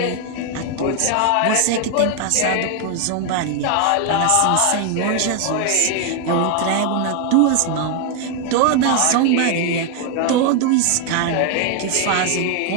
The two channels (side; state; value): both; different; correlation 0.01